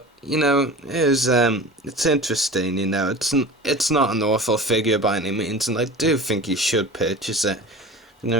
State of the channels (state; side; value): normal; both; correlation 0.35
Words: it's interesting. It's not an awful figure by any means, and I do think you should purchase it.